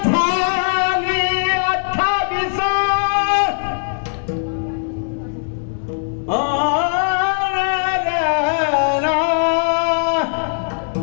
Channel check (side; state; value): right; silent; digital silence